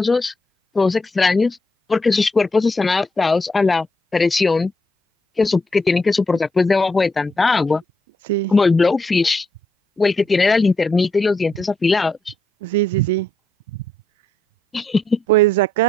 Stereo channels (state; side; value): normal; both; correlation 0.78